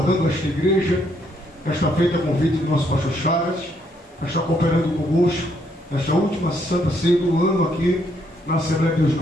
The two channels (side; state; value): both; normal; correlation 0.71